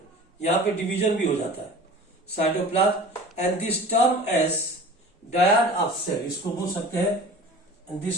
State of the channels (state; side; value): normal; both; correlation 0.40